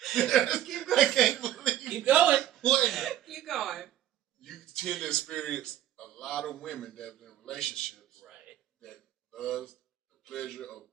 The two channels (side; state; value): left; quieter; 12.0 dB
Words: Keep going. I can't believe. Keep going. What? Keep going. You tend to experience a lot of women that have been in relationships that loves the pleasure of